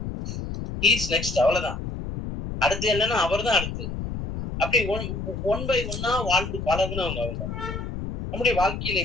இஸ் நெக்ஸ்ட், அவ்வளவுதான். அடுத்து என்னன்னா அவர் தான் அடுத்து. அப்படி ஒன் பை ஒன்னா வாழ்ந்து பழகுனவங்க அவங்க. நம்முடைய வாழ்க்கையில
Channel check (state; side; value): noise; left; rumble, 6 dB below the sound